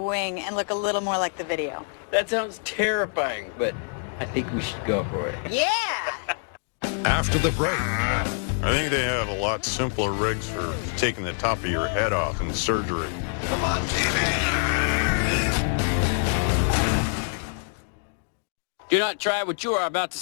and look a little more like the video. That sounds terrifying, but I think we should go for it. Yeah! After the break, I think they have a lot simpler rigs for taking the top of your head off in surgery. Come on, Do not try what you are about to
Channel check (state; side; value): silent; right; 61 dB below the other